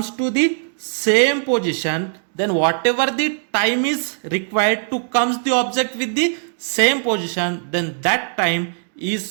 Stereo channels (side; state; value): left; silent; digital silence